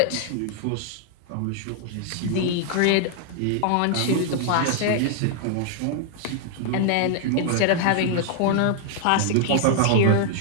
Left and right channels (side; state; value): both; different; correlation 0.00